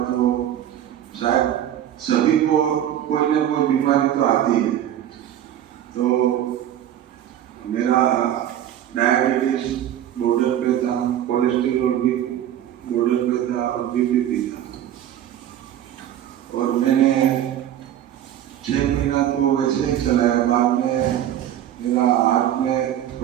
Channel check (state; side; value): quieter; left; 11.2 dB